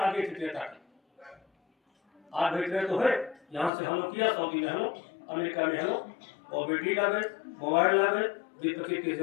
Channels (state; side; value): drops out; right; at 3.7 s